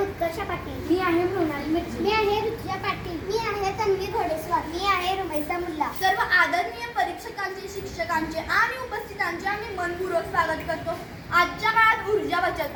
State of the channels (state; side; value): identical; both; correlation 1.00